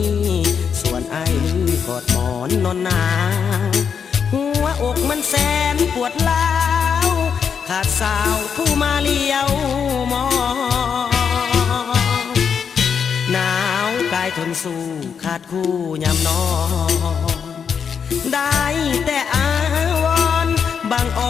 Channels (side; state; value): right; quieter; 6.9 dB